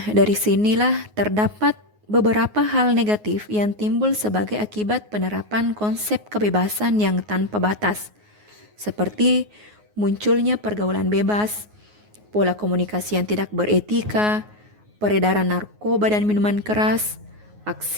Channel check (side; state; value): left; late; 9.5 ms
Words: dari sinilah terdapat beberapa hal negatif yang timbul sebagai akibat penerapan konsep kebebasan yang tanpa batas, seperti munculnya pergaulan bebas, pola komunikasi yang tidak beretika, peredaran narkoba dan minuman keras,